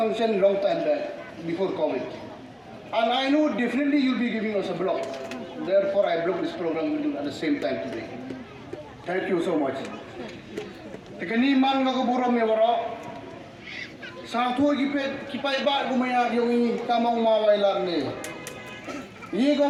long time back before COVID. And I know definitely you'll be giving us a block. Therefore, I block this program with you at the same time today. Thank you so much. Tekani man ngakaburam ya waro. Satu kipai ba gumaya yung kamang mawailar ni. Ye ko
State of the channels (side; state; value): both; identical; correlation 1.00